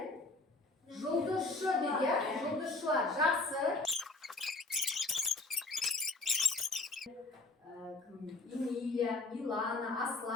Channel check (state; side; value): quieter; right; 3.2 dB